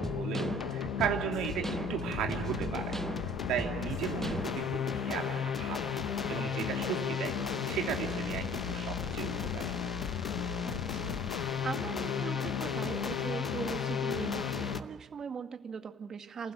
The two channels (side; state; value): both; normal; correlation 0.51